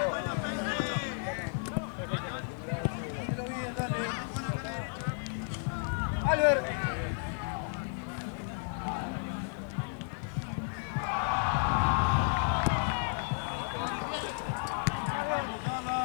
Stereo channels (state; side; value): silent; right; 56 dB below the other